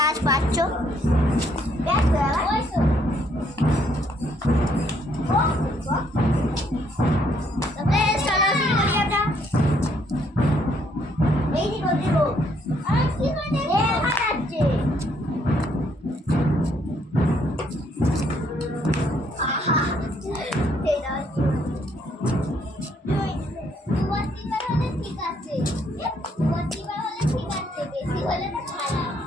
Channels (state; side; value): normal; both; correlation 0.69